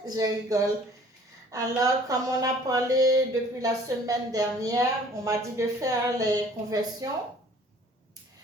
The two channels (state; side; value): normal; both; correlation 0.53